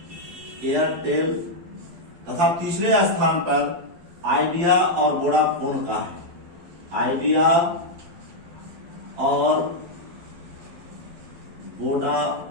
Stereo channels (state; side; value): late; left; 12 ms